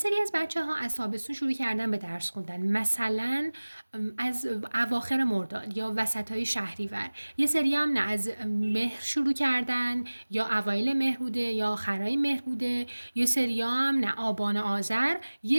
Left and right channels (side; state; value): both; inverted; correlation -1.00